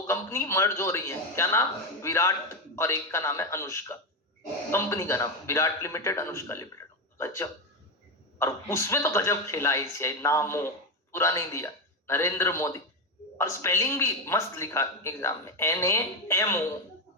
कंपनी मर्ज हो रही है। क्या नाम, विराट, और एक का नाम है अनुष्का। कंपनी का नाम विराट लिमिटेड, अनुष्का लिमिटेड। गजब। और उसमें तो गजब खेला आईसीआई, नामो पूरा नहीं दिया, नरेंद्र मोदी, और स्पेलिंग भी मस्त लिखा एग्जाम में, NAMO,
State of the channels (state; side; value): normal; both; correlation 0.11